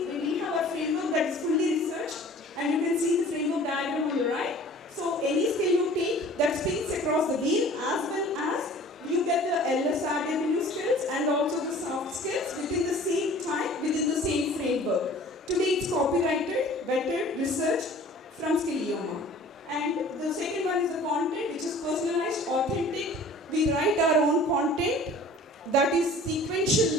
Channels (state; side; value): normal; both; correlation 0.47